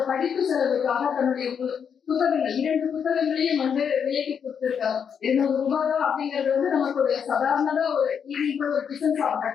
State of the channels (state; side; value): quieter; right; 7.3 dB